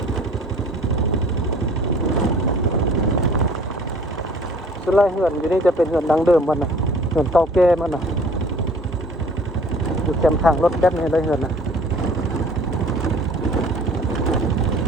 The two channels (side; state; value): both; normal; correlation 0.50